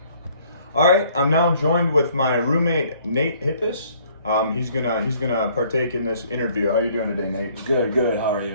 All right, I'm now joined with my roommate Nate Hippis. He's gonna partake in this interview. How are you doing today, Nate? Good. How are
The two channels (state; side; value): inverted; both; correlation -0.60